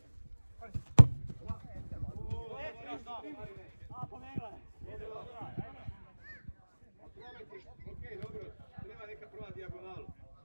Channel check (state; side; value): inverted; both; correlation -1.00